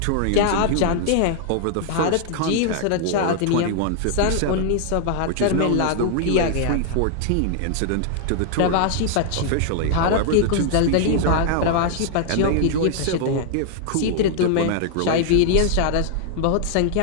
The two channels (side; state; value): both; different; correlation 0.00